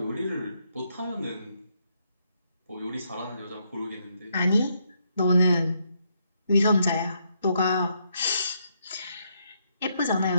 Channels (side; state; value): both; inverted; correlation -0.76